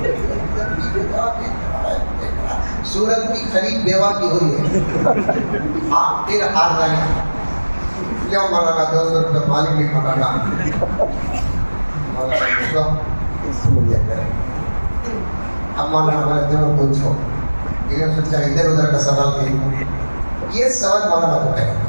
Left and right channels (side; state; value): both; inverted; correlation -1.00